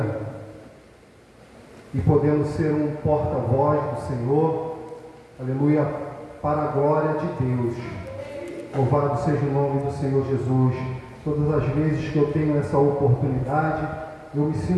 e podemos ser um porta-voz do Senhor, aleluia, para a glória de Deus. Louvado seja o nome do Senhor Jesus. Todas as vezes que eu tenho essa oportunidade, eu me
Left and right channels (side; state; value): both; identical; correlation 1.00